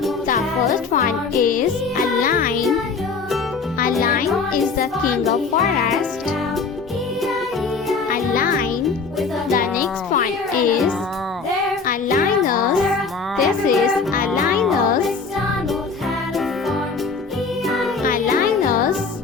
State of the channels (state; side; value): quieter; right; 4.7 dB